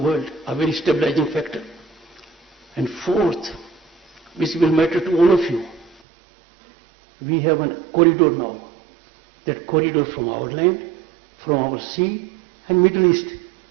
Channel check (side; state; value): left; drops out; at 6.0 s